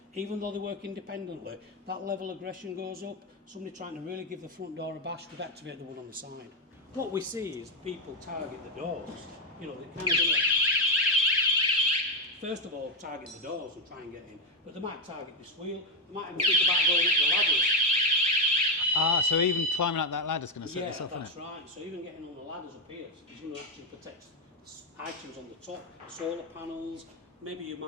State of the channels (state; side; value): normal; both; correlation 0.07